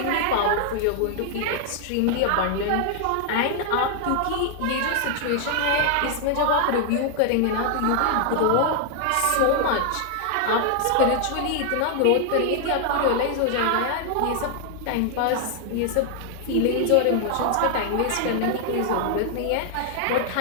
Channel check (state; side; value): different; both; correlation 0.00